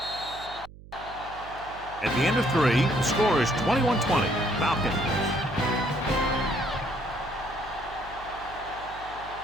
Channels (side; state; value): right; noise; hum, 18 dB below the sound